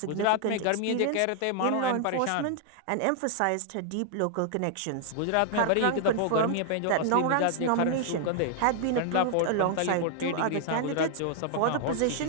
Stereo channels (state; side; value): different; both; correlation -0.01